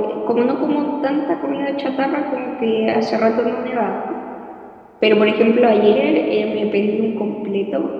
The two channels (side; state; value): both; identical; correlation 1.00